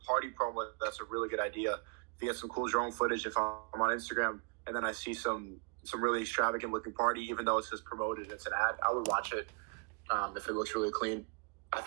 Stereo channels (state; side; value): quieter; left; 36.1 dB